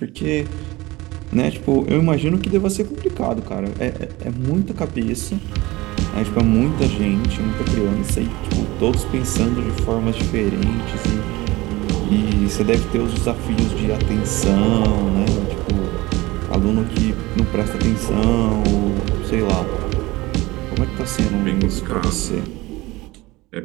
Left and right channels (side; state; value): left; quieter; 20.4 dB